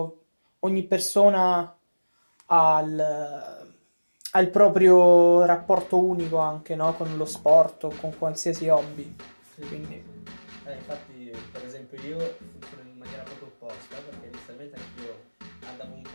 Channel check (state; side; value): inverted; both; correlation -1.00